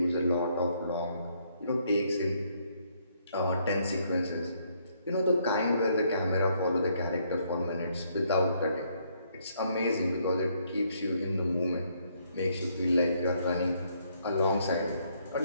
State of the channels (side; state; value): both; inverted; correlation -0.70